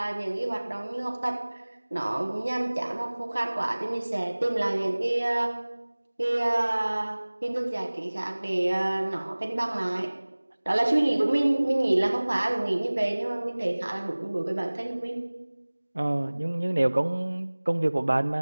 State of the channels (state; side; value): inverted; both; correlation -1.00